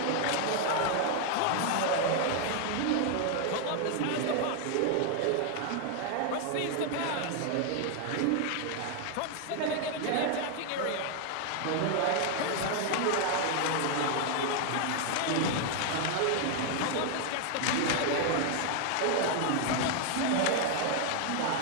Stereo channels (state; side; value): different; both; correlation 0.00